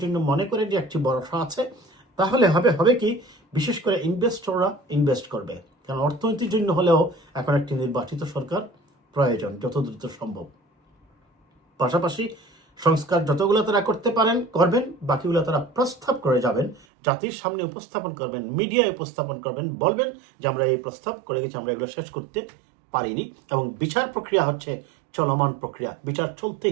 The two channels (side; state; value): left; drops out; at 16.9 s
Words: জন্য মনে করে যে একটি ভরসা আছে, তাহলে হবে কি, বিশেষ করে ইনভেস্টররা ইনভেস্ট করবে। কারণ অর্থনীতির জন্য হলেও এখন একটি নির্বাচিত সরকার প্রয়োজন যত দ্রুত সম্ভব। পাশাপাশি সংস্কার যতগুলো তারা করতে পারেন করবেন, বাকিগুলো তারা প্রস্তাব করে যাবেন, জাতির সামনে উপস্থাপন করবেন, মিডিয়ায় উপস্থাপন করবেন, বলবেন যে আমরা এই প্রস্তাব করে গেছি, আমরা এগুলো শেষ করতে পারিনি। এবং বিচার প্রক্রিয়া হচ্ছে চলমান প্রক্রিয়া, বিচার